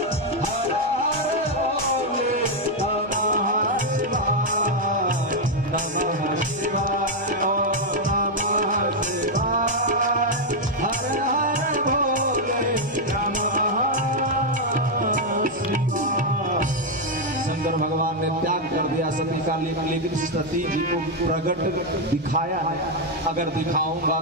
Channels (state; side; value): noise; right; hum, 23 dB below the sound